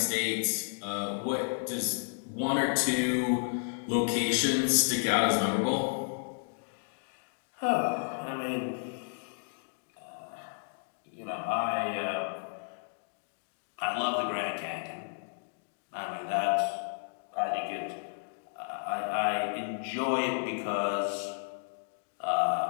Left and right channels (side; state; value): right; silent; digital silence